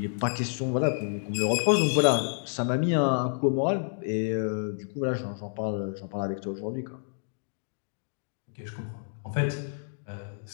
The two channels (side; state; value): right; silent; digital silence